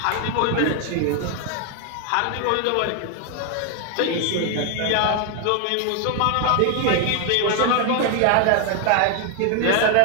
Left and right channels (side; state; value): both; different; correlation 0.01